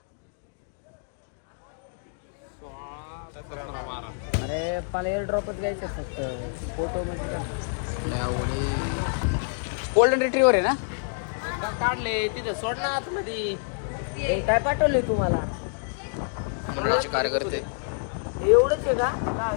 अरे मला एअर ड्रॉपच घ्यायचं फक्त. फोटो गोल्डन रिट्रीवर आहे ना? काढले तिथे सोड ना आतमध्ये. काय पाठवले तुम्हाला? मंडळाचे कार्यकर्ते एवढंच आहे का?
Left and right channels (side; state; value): right; silent; digital silence